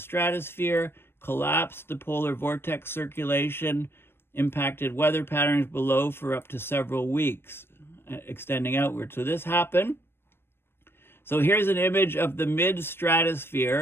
collapsed the polar vortex circulation, impacted weather patterns below for up to several weeks, extending outward. So this happened. So here's an image of the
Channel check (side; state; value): right; late; 0.11 ms